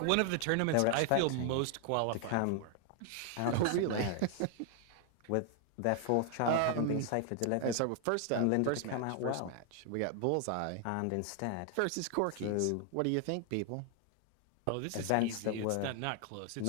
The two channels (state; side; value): different; both; correlation 0.00